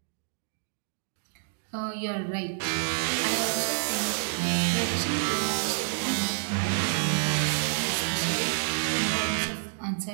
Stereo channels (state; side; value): silent; left; digital silence